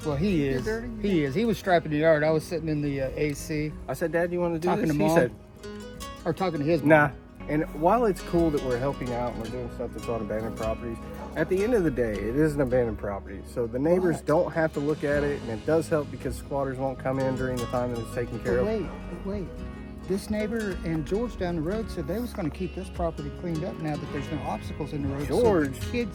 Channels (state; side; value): identical; both; correlation 1.00